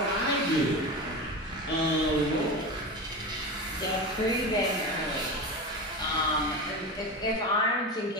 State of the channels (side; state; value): both; normal; correlation 0.24